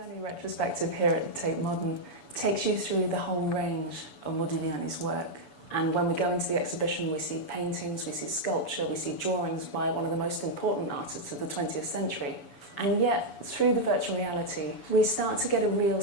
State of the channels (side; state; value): right; late; 7.0 ms